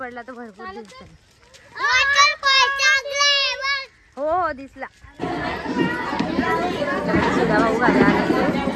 तर भरपूर दिसत. हो हो दिसला. सुधा भाऊ घरी आले,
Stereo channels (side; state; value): both; identical; correlation 1.00